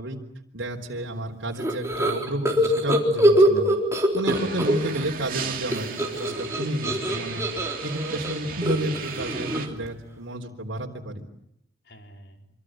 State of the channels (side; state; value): both; normal; correlation 0.52